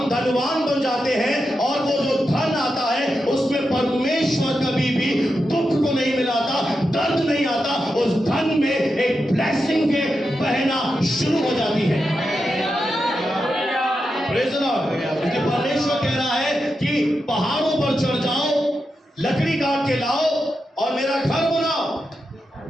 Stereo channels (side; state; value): both; normal; correlation 0.88